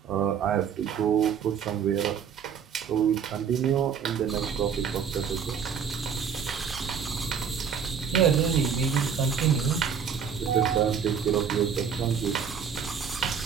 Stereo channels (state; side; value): quieter; left; 7.1 dB